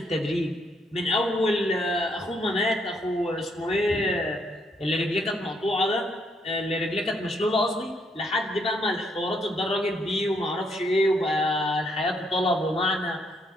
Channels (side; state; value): both; normal; correlation 0.73